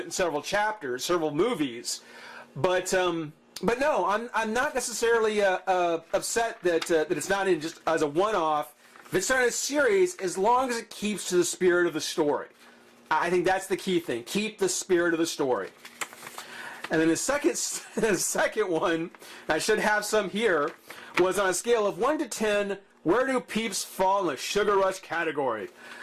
in several chapters, several movies. But no, I'm not necessarily upset that it's not in just as a one-off. If it's not in a series, as long as it keeps to the spirit of the story. I think that's the key thing. Keep the spirit of the story. And then the second one, I should have some here, was on a scale of 1 to 10, where do peeps fall in the Sugar Rush category?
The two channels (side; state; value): both; identical; correlation 1.00